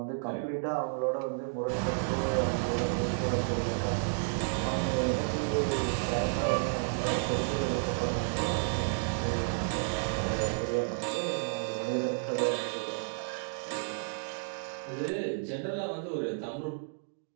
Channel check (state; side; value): silent; left; digital silence